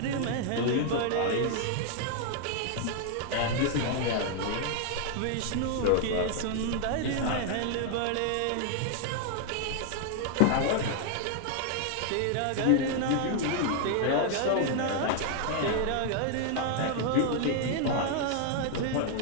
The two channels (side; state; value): both; different; correlation 0.00